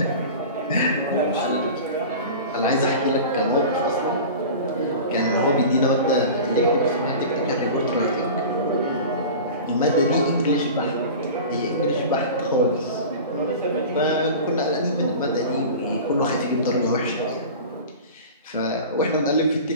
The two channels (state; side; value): inverted; both; correlation -0.35